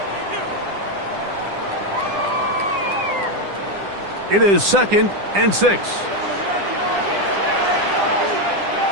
It is 2nd and 6.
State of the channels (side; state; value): left; late; 10 ms